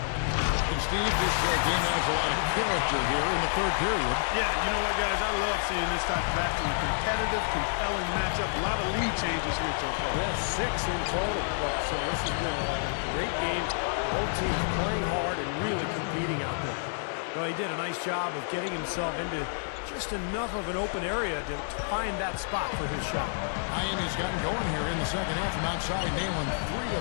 And Steve, this game has a lot of character here in the third period. Yeah, you know what, guys? I love seeing this type of action. Competitive, compelling matchup. A lot of lead changes here so far. Yeah, 6 in total. Well, so this has been a great game. Both teams playing hard and really competing out there. Well, he did a nice job of getting himself into just enough of an open area to find that spot for his shot. Miami's gotten going here in the second half from outside, nailing 3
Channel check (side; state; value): right; silent; digital silence